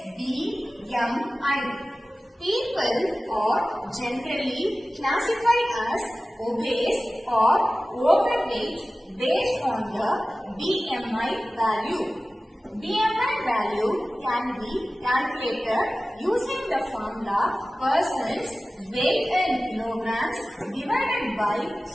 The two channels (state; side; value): normal; both; correlation 0.96